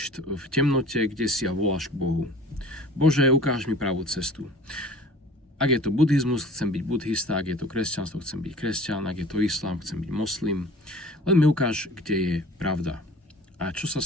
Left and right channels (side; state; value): both; normal; correlation 0.45